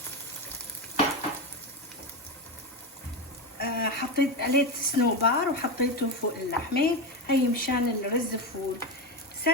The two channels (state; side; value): normal; both; correlation 0.15